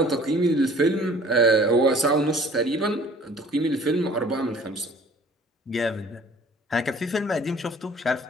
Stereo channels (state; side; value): normal; both; correlation 0.51